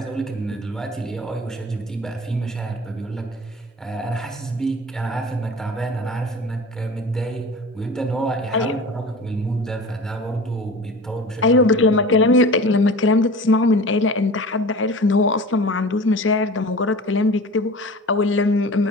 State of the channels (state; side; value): normal; both; correlation 0.37